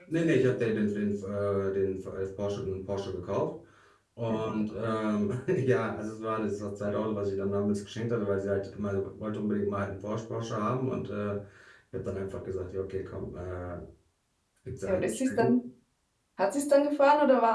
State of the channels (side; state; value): both; identical; correlation 1.00